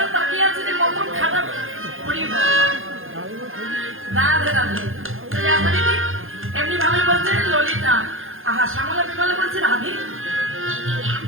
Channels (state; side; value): late; left; 0.60 ms